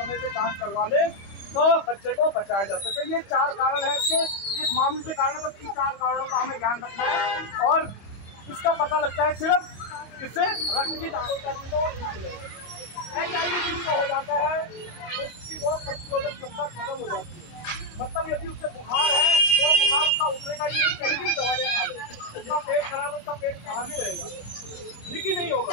से जांच करवा ले तो बच्चे को बचाया जा सके। ये 4 कारण है इसके, इस मामले से कारण बस इन 4 कारणों का हमें ध्यान रखना है और इसका पता लगता है सिर्फ इससे रक्त की जांच करने को HIV जिसको हो जाता है उसकी रोग प्रतिरोधक क्षमता खत्म हो जाती है। मतलब यदि उससे बुखार है तो बुखार उसका उतरेगा ही नहीं, कहीं भी दवाइयाँ खा ले, उसका पेट खराब, उसका पेट खराब ही रहेगा, ठीक ही नहीं होगा।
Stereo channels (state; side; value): late; right; 25 ms